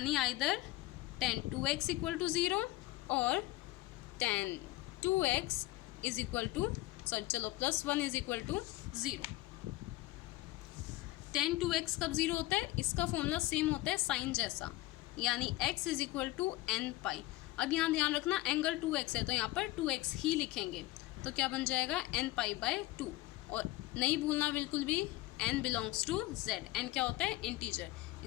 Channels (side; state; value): right; quieter; 18.2 dB